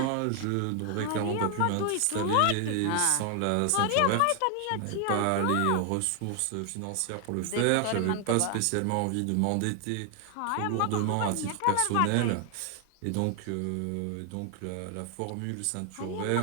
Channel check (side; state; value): both; different; correlation 0.00